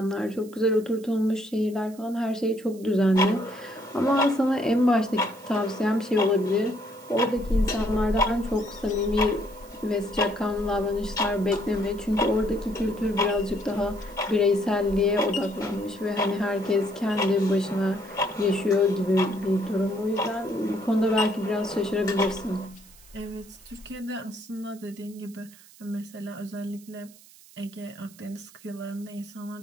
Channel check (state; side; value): noise; right; hiss, 23 dB below the sound